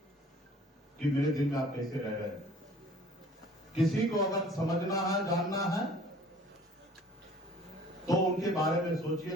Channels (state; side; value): normal; both; correlation 0.51